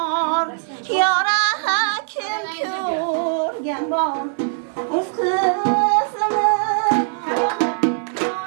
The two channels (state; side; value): silent; left; 60 dB below the other